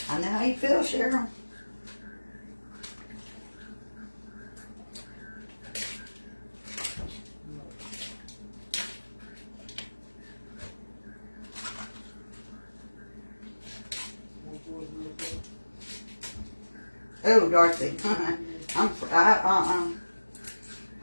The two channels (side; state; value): both; inverted; correlation -1.00